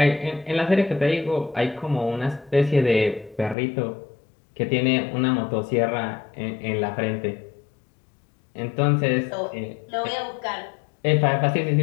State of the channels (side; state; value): right; drops out; at 3.6 s